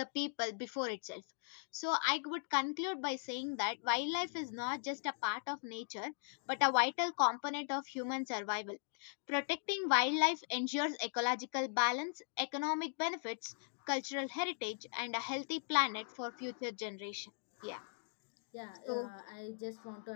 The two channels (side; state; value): right; silent; digital silence